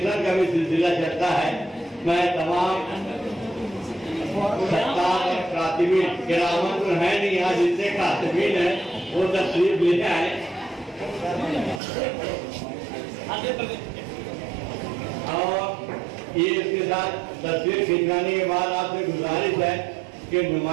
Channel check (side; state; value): left; drops out; at 11.8 s